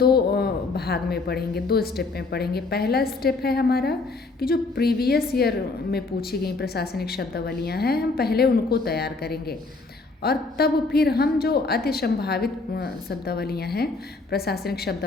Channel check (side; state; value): right; quieter; 3.7 dB